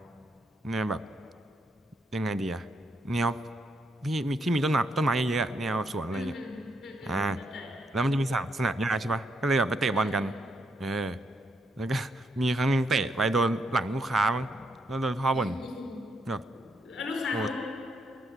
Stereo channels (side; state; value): both; normal; correlation 0.77